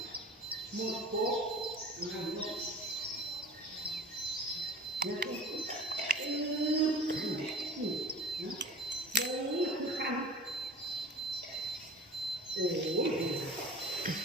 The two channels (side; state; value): both; normal; correlation 0.39